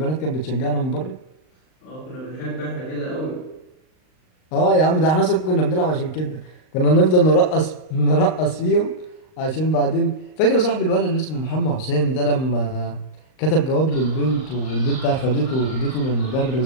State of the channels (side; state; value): right; late; 38 ms